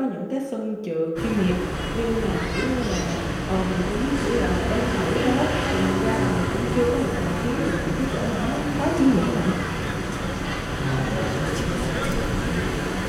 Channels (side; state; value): both; identical; correlation 1.00